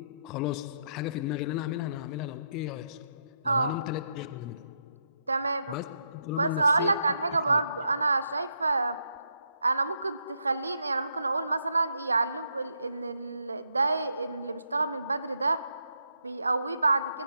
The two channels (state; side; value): inverted; both; correlation -0.78